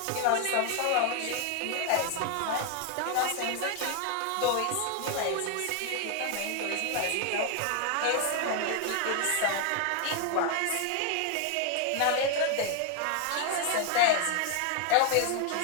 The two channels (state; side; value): different; both; correlation 0.00